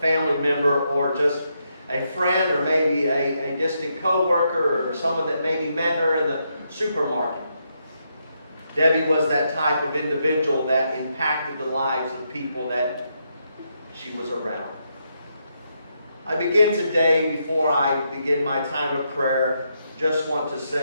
member, or just a friend, or maybe a distant co-worker, or someone that maybe met her in the supermarket. Debbie was that type of individual that impacted the lives of people that she was around. I begin today, before I begin my time of prayer, just want to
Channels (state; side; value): inverted; both; correlation -0.80